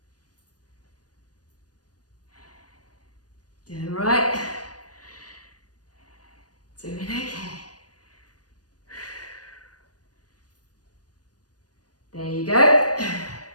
Doing right. Doing okay. There you go.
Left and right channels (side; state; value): right; late; 0.69 ms